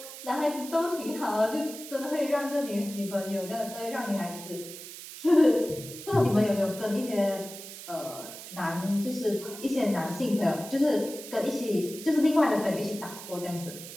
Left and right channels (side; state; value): right; noise; hiss, 12 dB below the sound